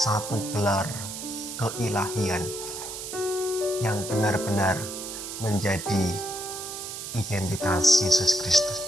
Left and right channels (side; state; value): right; noise; hiss, 8 dB below the sound